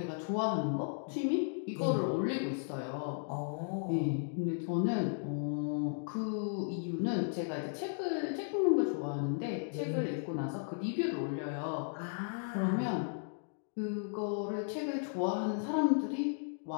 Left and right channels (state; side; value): silent; right; digital silence